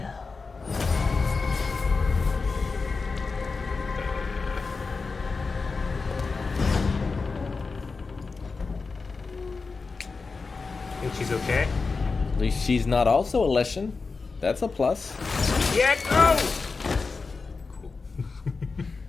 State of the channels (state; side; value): quieter; right; 4.3 dB